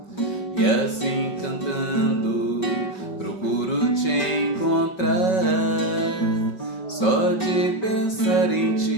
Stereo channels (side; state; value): right; late; 5.3 ms